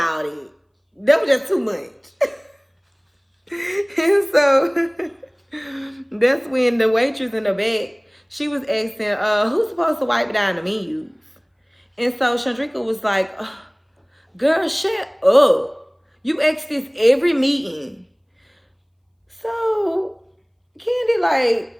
that. That was just too much. And so that's when the waitress in the back, she was asking, who's supposed to wipe down the menus? And so Chandrika was like, girl, shut up. You ask this every meeting. So Kandi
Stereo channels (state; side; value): identical; both; correlation 1.00